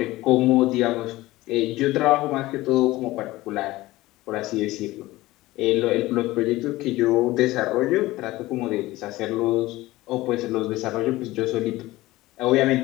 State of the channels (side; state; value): right; quieter; 18.2 dB